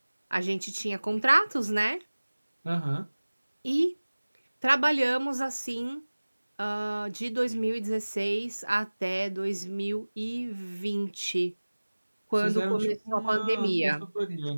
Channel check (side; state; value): both; inverted; correlation -1.00